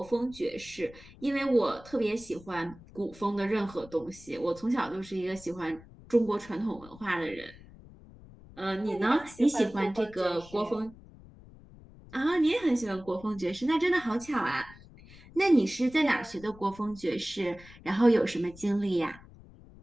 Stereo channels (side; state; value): left; noise; rumble, 21 dB below the sound